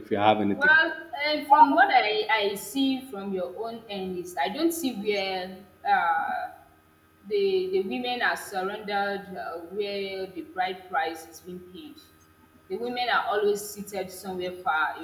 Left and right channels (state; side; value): identical; both; correlation 1.00